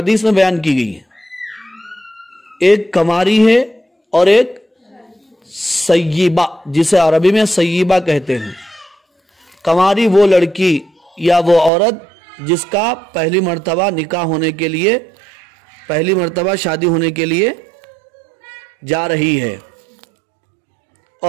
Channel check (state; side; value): drops out; left; at 11.7 s